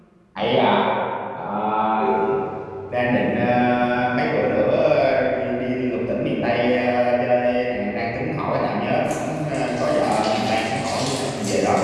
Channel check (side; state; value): both; identical; correlation 1.00